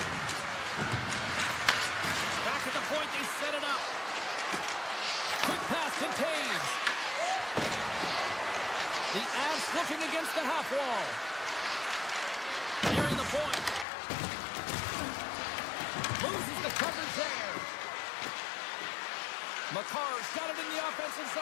Back at the point, they set it up. Quick pass to Taves. The Avs looking against the half wall. Nearing the point. Loses the coverage there. McCarr's got it in the offensive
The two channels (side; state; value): right; drops out; at 13.9 s